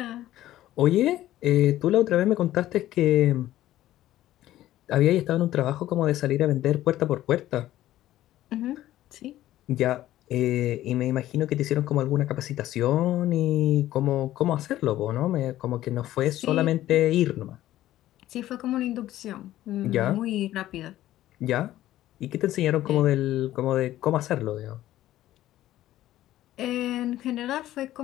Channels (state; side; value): quieter; right; 14.1 dB